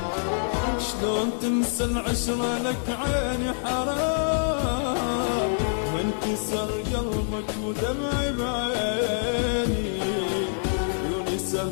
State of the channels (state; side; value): silent; right; digital silence